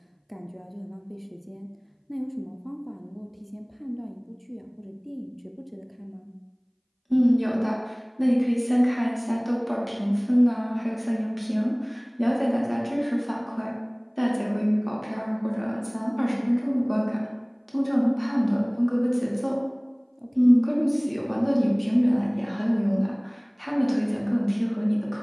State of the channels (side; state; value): both; identical; correlation 1.00